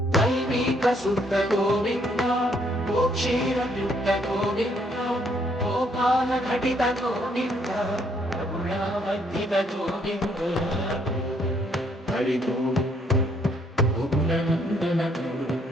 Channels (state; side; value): normal; both; correlation 0.68